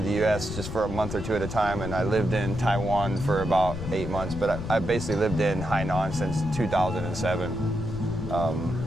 the U.S. just for a month or two at a time, and I lived in Taiwan for about 8 months, but I basically lived in Hainan since 2007.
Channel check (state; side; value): noise; left; rumble, 7 dB below the sound